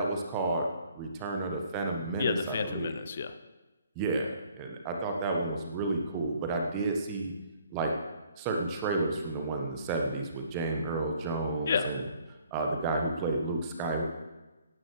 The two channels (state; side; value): inverted; both; correlation -0.60